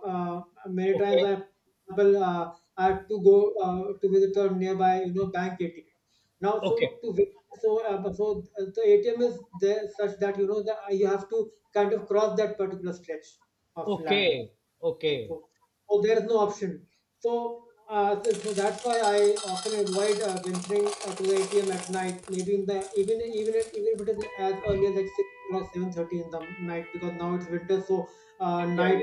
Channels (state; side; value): identical; both; correlation 1.00